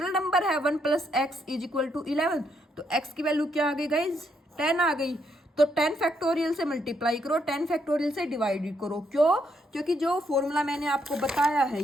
नंबर है 1 + x = 11, तो x की वैल्यू क्या आ गई गाइज 10 आ गई, तो 10 फैक्टोरियल से मल्टीप्लाई करो, 10 फैक्टोरियल से डिवाइड करो, क्यों, क्योंकि जो फॉर्मूला मैंने आपको बताया है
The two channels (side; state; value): both; normal; correlation 0.75